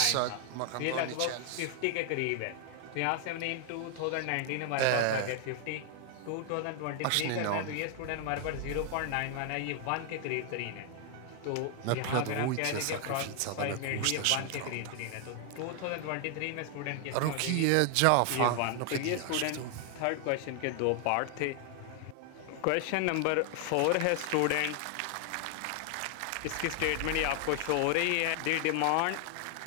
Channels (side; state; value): both; different; correlation 0.00